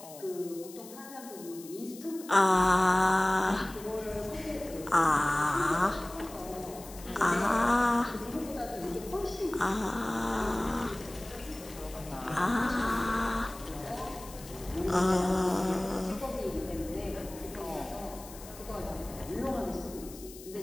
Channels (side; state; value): left; noise; hiss, 17 dB below the sound